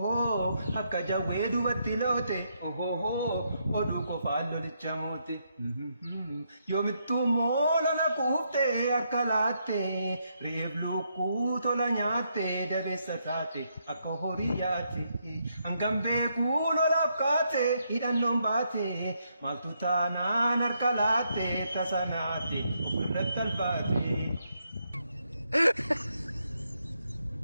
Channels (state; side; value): inverted; both; correlation -0.78